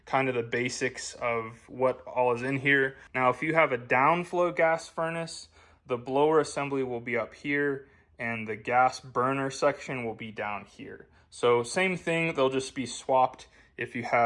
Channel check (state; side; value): identical; both; correlation 1.00